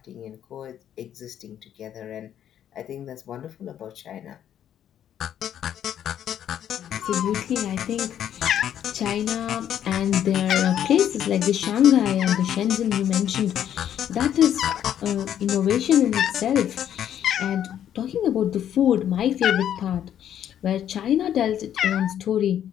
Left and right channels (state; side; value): quieter; right; 10.2 dB